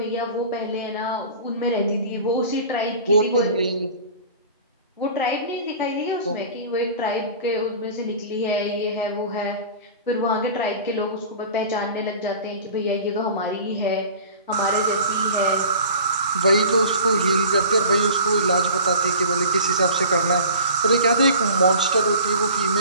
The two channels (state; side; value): inverted; both; correlation -0.42